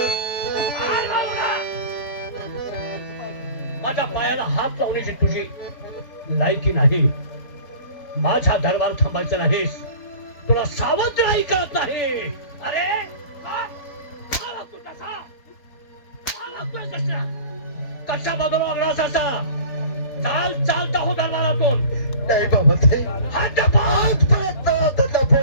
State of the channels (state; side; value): late; right; 3.9 ms